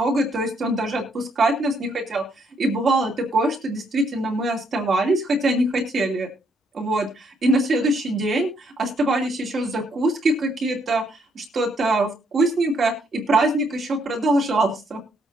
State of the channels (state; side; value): normal; both; correlation 0.72